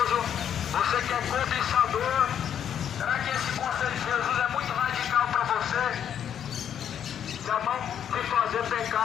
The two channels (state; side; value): quieter; right; 9.1 dB